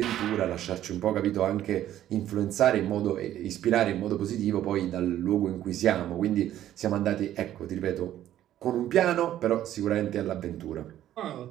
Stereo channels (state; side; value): quieter; left; 12.3 dB